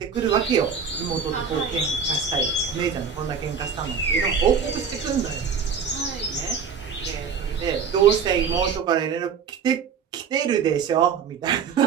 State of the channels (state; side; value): quieter; left; 6.4 dB